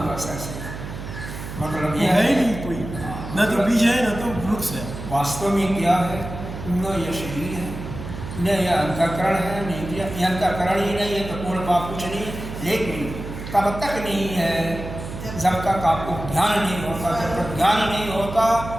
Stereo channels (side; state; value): right; noise; hum, 9 dB below the sound